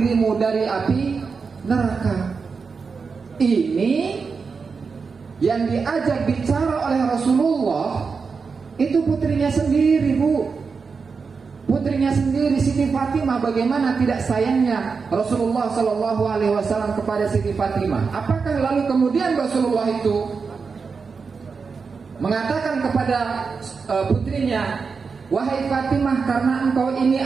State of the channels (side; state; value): left; quieter; 5.1 dB